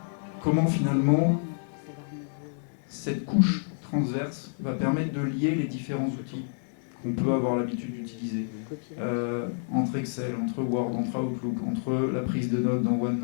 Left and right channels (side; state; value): right; silent; 59 dB below the other